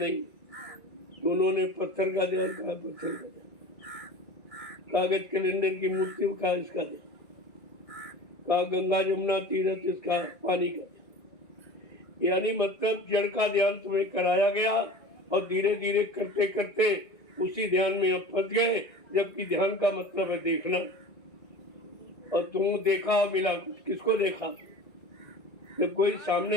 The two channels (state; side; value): late; right; 1.9 ms